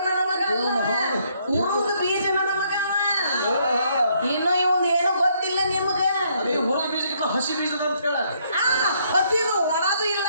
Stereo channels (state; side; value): inverted; both; correlation -0.70